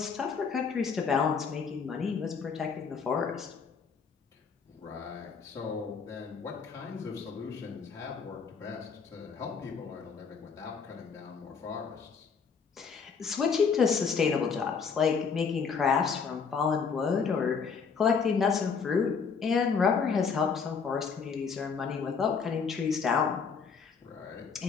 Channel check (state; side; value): quieter; right; 5.8 dB